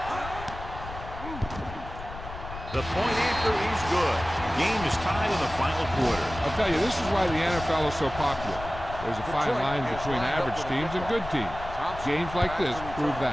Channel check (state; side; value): noise; left; rumble, 11 dB below the sound